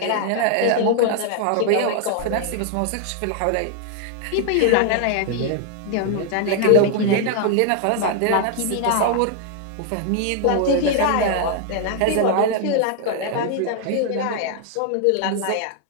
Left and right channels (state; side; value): different; both; correlation 0.00